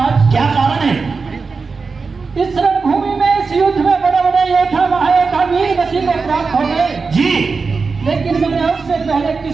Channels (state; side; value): quieter; left; 4.6 dB